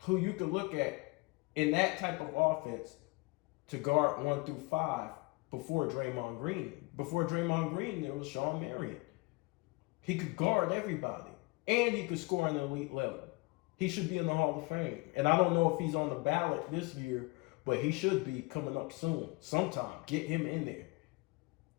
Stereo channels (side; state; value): right; quieter; 26.0 dB